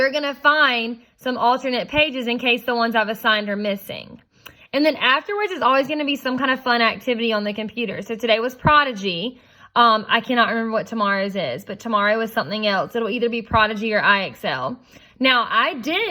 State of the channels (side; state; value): both; identical; correlation 1.00